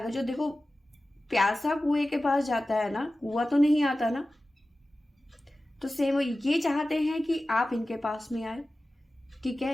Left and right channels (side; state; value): both; normal; correlation 0.95